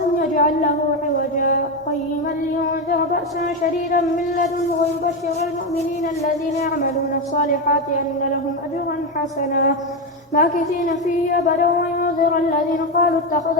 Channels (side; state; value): both; normal; correlation 0.11